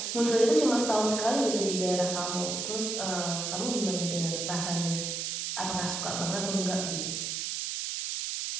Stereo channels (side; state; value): right; noise; hiss, 2 dB below the sound